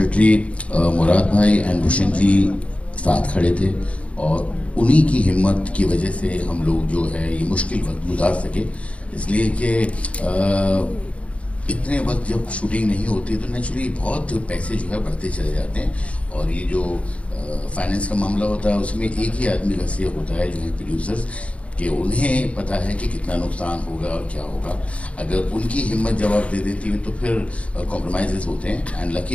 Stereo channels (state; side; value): late; right; 0.063 ms